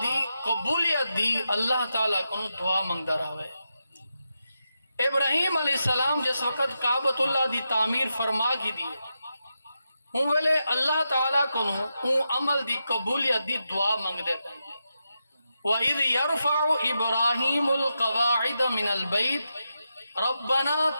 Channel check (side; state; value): both; inverted; correlation -0.87